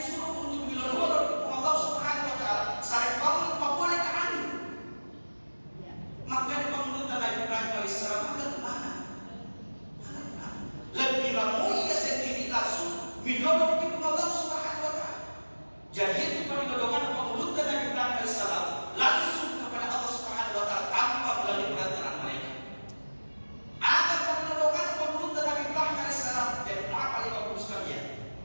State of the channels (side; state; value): both; inverted; correlation -1.00